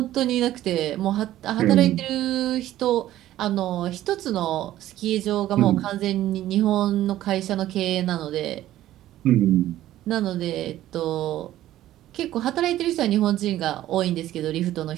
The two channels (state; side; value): quieter; left; 13.7 dB